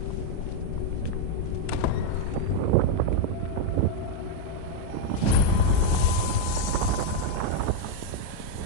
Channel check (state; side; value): different; both; correlation 0.00